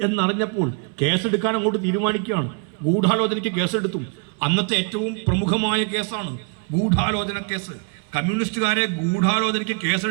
എന്നറിഞ്ഞപ്പോൾ കേസെടുക്കാൻ അങ്ങോട്ട് തീരുമാനിക്കുകയാണ്. ഗൂഢാലോചനയ്ക്ക് കേസെടുത്തു. അന്നത്തെ ഏറ്റവും പ്രമുഖമായ കേസാണ് ഗൂഢാലോചന കേസ്. കമ്മ്യൂണിസ്റ്റുകാരെ ഗൂഢാലോചനയ്ക്ക്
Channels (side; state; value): left; quieter; 37.5 dB